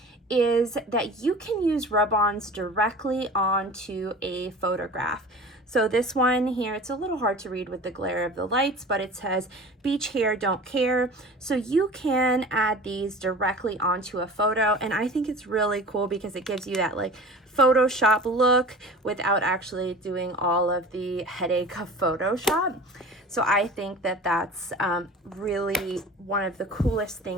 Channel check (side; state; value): both; normal; correlation 0.39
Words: is that you can use rub-ons directly onto a photograph. So this one here, it's a little hard to read with the glare of the lights, but it says beach hair, don't care. So you can add these directly onto a photo, and I think it's really cool because it gives you that like Photoshop look without actually doing all of the headache of Photoshop. So I think that that's really one of the coolest